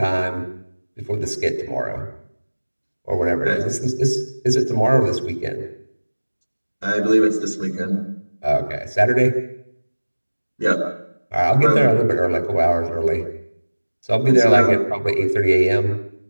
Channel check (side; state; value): both; inverted; correlation -1.00